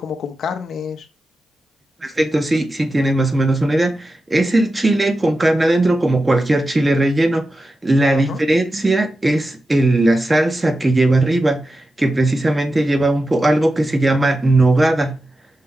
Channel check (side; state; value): both; normal; correlation 0.91